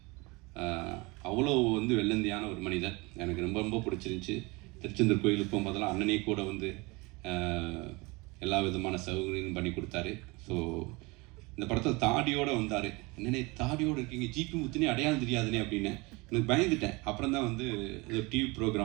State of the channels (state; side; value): quieter; left; 25.5 dB